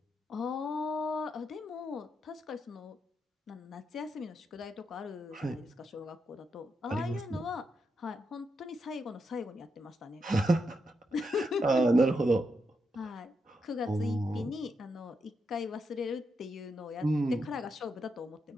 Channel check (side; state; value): both; normal; correlation 0.83